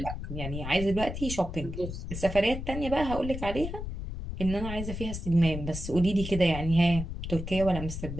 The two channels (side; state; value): left; noise; rumble, 7 dB below the sound